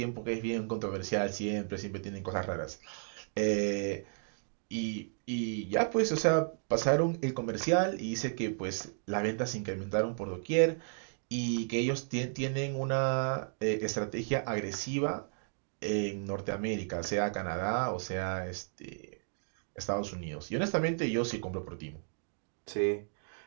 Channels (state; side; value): silent; left; digital silence